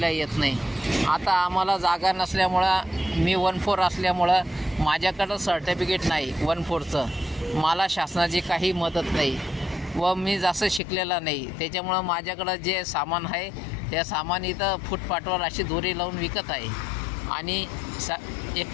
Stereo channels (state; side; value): drops out; right; at 10.8 s